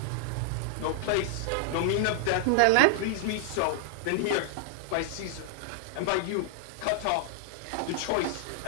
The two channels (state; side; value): different; both; correlation 0.00